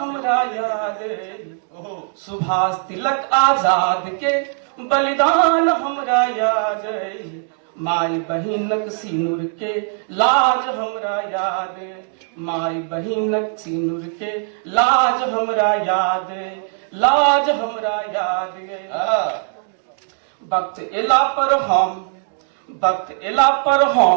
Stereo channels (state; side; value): silent; left; 58 dB below the other